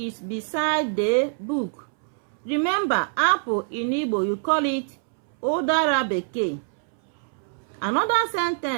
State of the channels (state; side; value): silent; left; 62 dB below the other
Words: beside the book. Remember, apple in Igbo, you call it ụdara bekee. Another